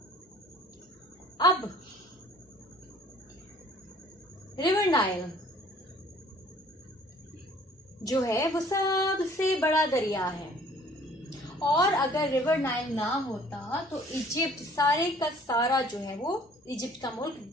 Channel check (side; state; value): both; normal; correlation 0.55